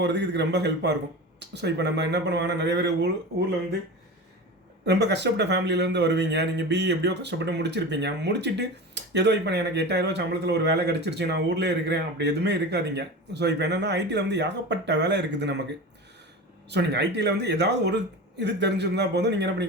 இதுக்கு ரொம்ப ஹெல்ப்பாக இருக்கும். ஸோ இப்போ நம்ம என்ன பண்ணுவாங்கன்னா நிறைய பேர் ஊரில் வந்து ரொம்ப கஷ்டப்பட்ட ஃபேமிலியிலேருந்து வருவீங்க. நீங்கள் பிஇ எப்படியோ கஷ்டப்பட்டு முடிச்சிருப்பீங்க. முடிச்சுட்டு ஏதோ இப்போ எனக்கு 8000 சம்பளத்தில் ஒரு வேலை கிடச்சிருச்சு, நான் ஊரில் இருக்கிறேன், அப்படி எதுவுமே இருக்காதீங்க. ஸோ இப்போ என்னென்னா ஐடியில் வந்து ஏகப்பட்ட வேலை இருக்குது நமக்கு. ஸோ நீங்கள் ஐடியில் வந்து ஏதாவது ஒரு இது தெரிஞ்சிருந்தால் போதும், நீங்கள் என்ன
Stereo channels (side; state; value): both; normal; correlation 0.29